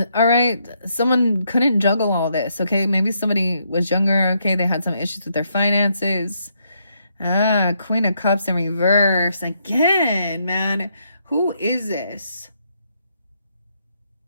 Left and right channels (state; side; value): inverted; both; correlation -0.76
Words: All right, someone couldn't juggle all this, okay? Maybe somebody was younger, okay? They had some issues with their finances. Queen of Cups in reverse. Again, man. Who is this?